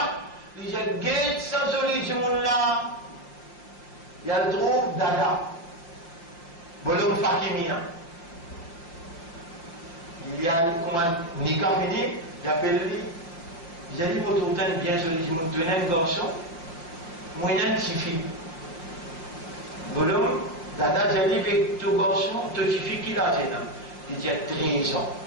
il dit un guet, ça joli, ce monde-là. Il trouve dada. Bonhomme Fakimia. Il y a, comment, nikah fini, il appelle lui. Il a dit, mon tourtin bien joli, il m'a donné un garçon, moi, il y a une petite fille. Bonhomme, dada, j'ai dit, avec ton garçon, ton petite fille qui l'a gêné. Il a 13 ans.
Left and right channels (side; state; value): right; late; 6.0 ms